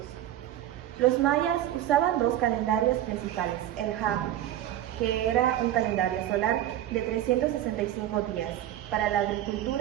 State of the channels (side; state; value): left; quieter; 12.4 dB